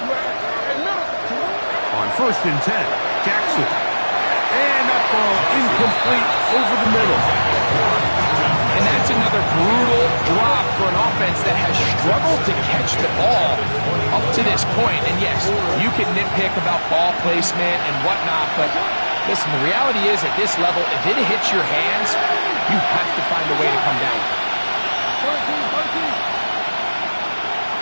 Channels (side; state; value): both; inverted; correlation -1.00